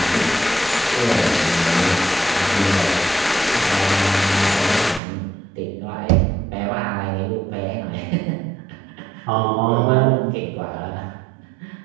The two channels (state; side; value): drops out; left; at 5.0 s